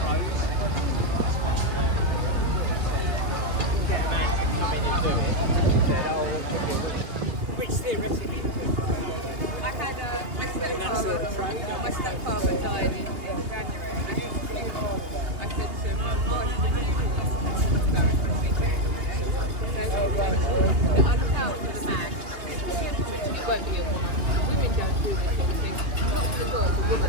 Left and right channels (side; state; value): left; late; 2.8 ms